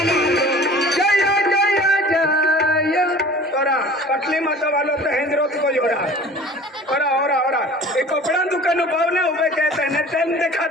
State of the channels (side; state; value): both; normal; correlation 0.44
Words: पटली माता वालों तो हेंद्रोत को जोड़ा और एक कपड़ा दुकान पावने उबे कहते हैं टाइम